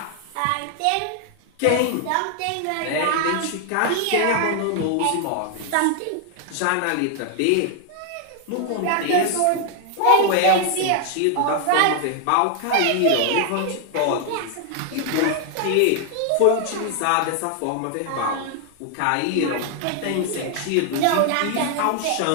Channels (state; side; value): different; both; correlation 0.00